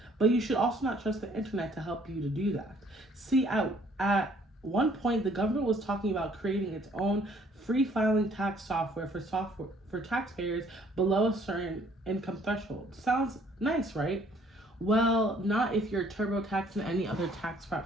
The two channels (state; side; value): normal; both; correlation 0.61